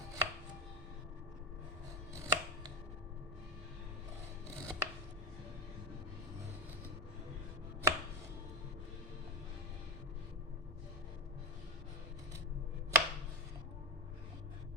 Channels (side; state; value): both; normal; correlation 0.17